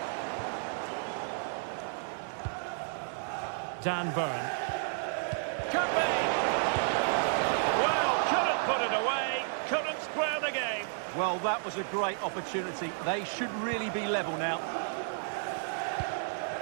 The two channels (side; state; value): left; silent; 56 dB below the other